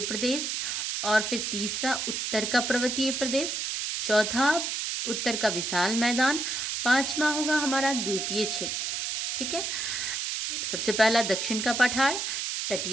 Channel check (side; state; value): right; noise; hiss, 2 dB below the sound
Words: प्रदेश, और फिर तीसरा उत्तर का पर्वतीय प्रदेश, चौथा उत्तर का विशाल मैदान, पांचवा होगा हमारा द्वीपीय क्षेत्र। ठीक है, सबसे पहला दक्षिण का पठार,